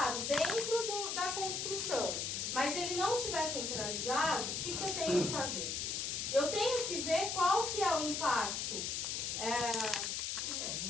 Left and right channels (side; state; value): left; noise; hiss, 2 dB below the sound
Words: dentro da construção, mas ele não estiver centralizado, o que eu tenho que fazer? Eu tenho que ver qual que é o impacto.